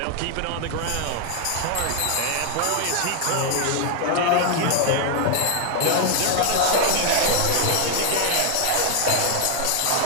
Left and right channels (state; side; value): different; both; correlation 0.00